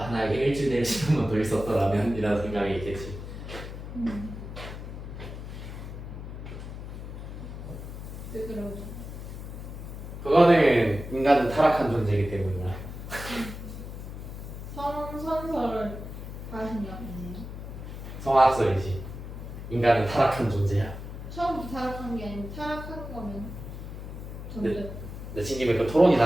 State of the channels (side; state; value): left; noise; hum, 9 dB below the sound